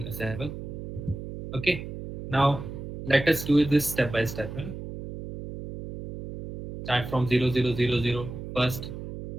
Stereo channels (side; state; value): right; noise; hum, 9 dB below the sound